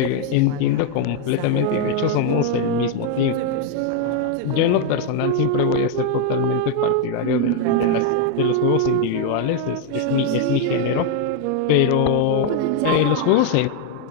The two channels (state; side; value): different; both; correlation 0.01